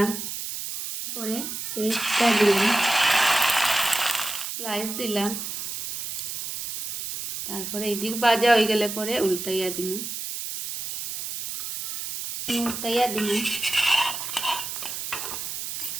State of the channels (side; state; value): right; noise; hiss, 6 dB below the sound